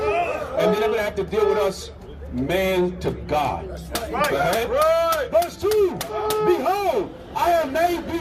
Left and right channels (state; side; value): identical; both; correlation 1.00